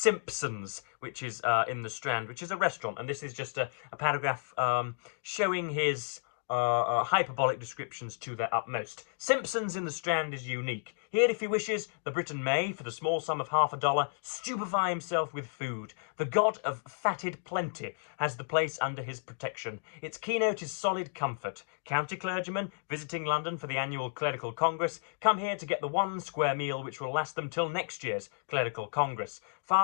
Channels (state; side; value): silent; right; digital silence